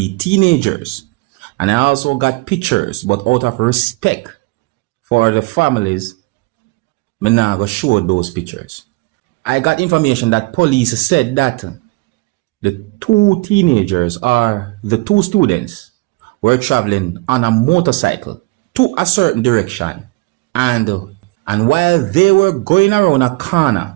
teenagers. And I also got pictures, but out of respect for the families, I'm not going to show those pictures. I got information that police said that the 2 teenagers or the 2 students were traveling on a motorcycle to a certain direction. And while they were going around a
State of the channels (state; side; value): quieter; left; 24.3 dB